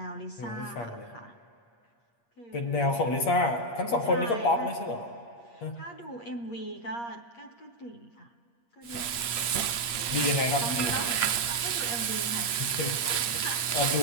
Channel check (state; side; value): late; right; 8.5 ms